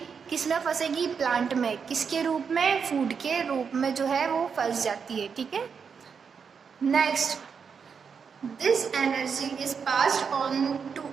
किस में फंसेगी, प्लांट में, किसके रूप में, फूड के रूप में जो है वो फंस जाती है, ठीक है. Next, this energy is passed on to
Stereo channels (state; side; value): quieter; left; 6.2 dB